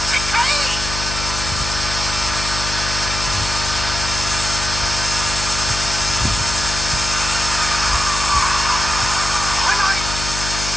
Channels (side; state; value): left; noise; hum, 6 dB below the sound